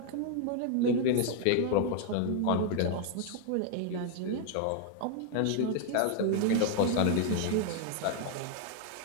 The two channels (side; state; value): both; different; correlation 0.00